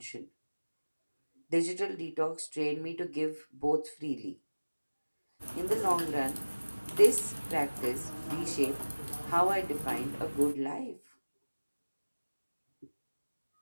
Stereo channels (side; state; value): both; inverted; correlation -1.00